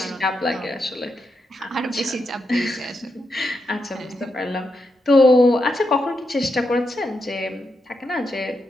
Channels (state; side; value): normal; both; correlation 0.84